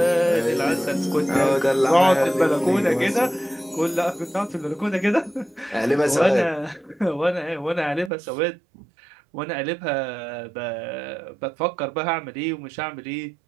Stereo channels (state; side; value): drops out; left; at 8.1 s